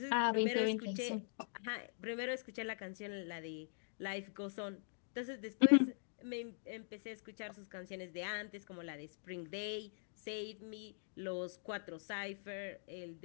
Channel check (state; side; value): silent; right; digital silence